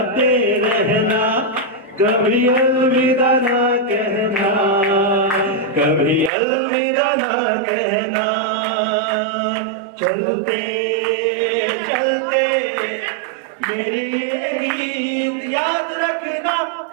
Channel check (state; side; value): drops out; left; at 6.3 s